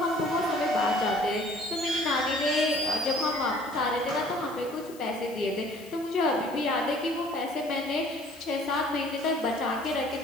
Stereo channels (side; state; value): left; noise; hiss, 21 dB below the sound